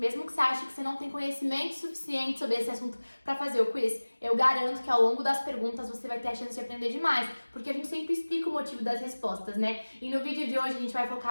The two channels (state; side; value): inverted; both; correlation -1.00